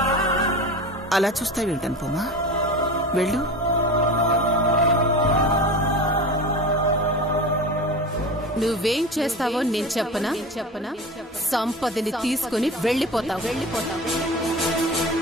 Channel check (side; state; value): both; normal; correlation 0.31